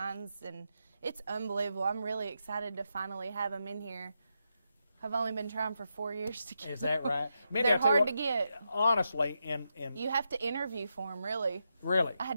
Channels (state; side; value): inverted; both; correlation -0.85